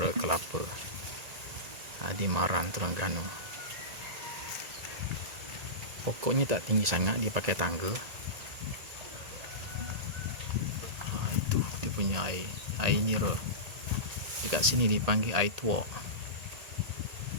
kelapa di Maran, Terengganu. Pokoknya tak tinggi sangat, dia pakai tangga. Itu dia punya air nira. Dekat sini dipanggil air tuak.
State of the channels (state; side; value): late; left; 1.8 ms